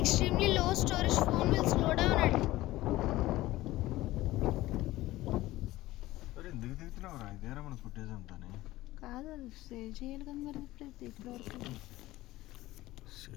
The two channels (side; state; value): right; quieter; 17.2 dB